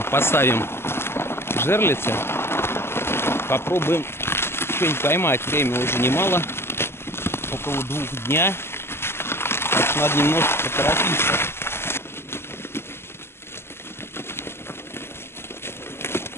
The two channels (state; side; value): late; right; 0.12 ms